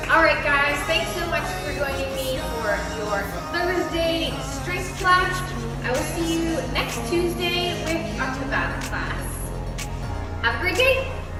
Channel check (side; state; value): both; identical; correlation 1.00